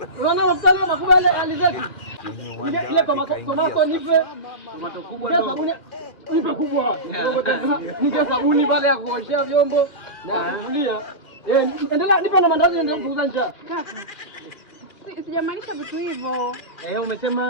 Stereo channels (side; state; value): right; late; 2.4 ms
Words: Unaona mafuta leo makubwa ile alizeti. Ile tomato nipe. Tomato kubwa ndo. Nipe kubwa. Nige sabuni pale ya kuoshea vyombo na kufulia. Endelea nipe na mandazi ndio kuuza njaa. Kaka. Sijamaanisha vitu hivyo.